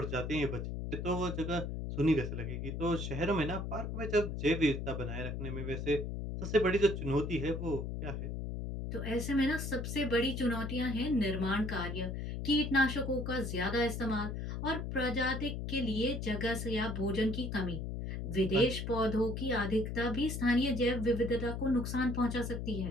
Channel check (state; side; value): noise; left; hum, 4 dB below the sound